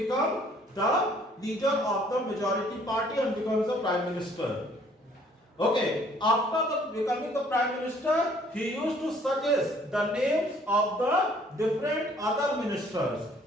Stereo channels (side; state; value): both; normal; correlation 0.59